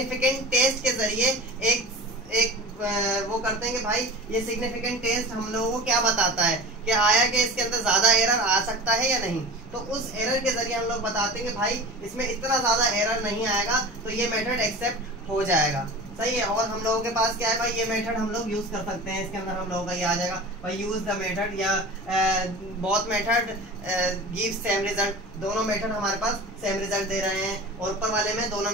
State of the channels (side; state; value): left; noise; rumble, 26 dB below the sound